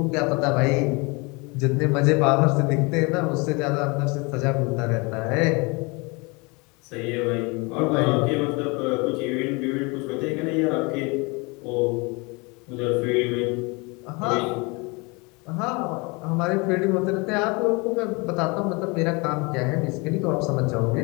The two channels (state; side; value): quieter; right; 28.2 dB